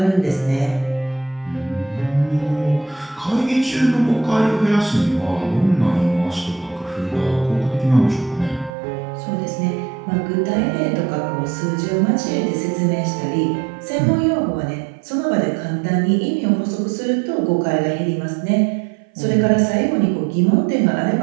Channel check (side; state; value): left; drops out; at 8.7 s